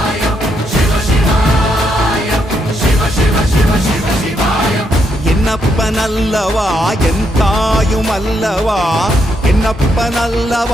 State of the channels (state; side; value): normal; both; correlation 0.77